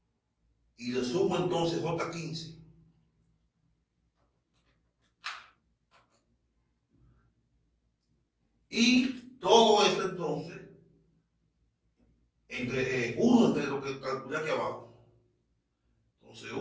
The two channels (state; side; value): identical; both; correlation 1.00